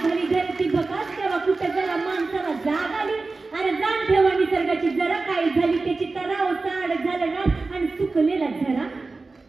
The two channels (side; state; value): left; quieter; 3.7 dB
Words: झाली धरती बकास तेव्हा कुठे जरा माणसाला जाग आली अरे जाण ठेवा निसर्गाची जरा काय झाली त्याची तराव साड झालं रात आणि सुकलेला झरा